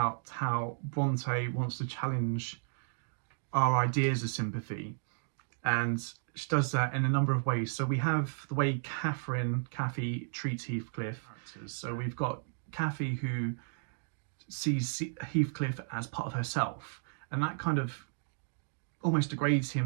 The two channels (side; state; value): left; silent; digital silence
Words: how Brontë wants to challenge our ideas of sympathy, and she does that in a number of ways. So we have the way Cathy treats Heathcliff. So we've got Cathy who sees Heathcliff as part of herself, and that kind of almost degrades